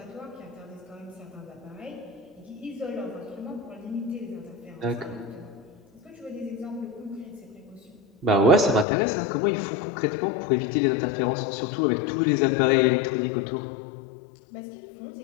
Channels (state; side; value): drops out; right; at 8.8 s